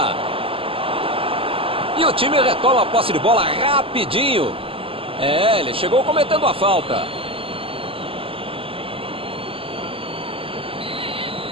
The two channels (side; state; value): left; late; 0.26 ms